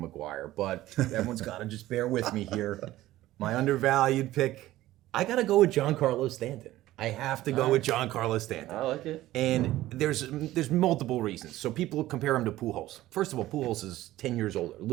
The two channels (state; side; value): quieter; left; 15.7 dB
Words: McGuire, but everyone's got to just bear with me here. My undervalued pick, I got to go with Giancarlo Stanton. I have to go with Giancarlo Stanton. I like it. And there's multiple reasons. So people compare him to Pujols. First of all, Pujols is 10 years older,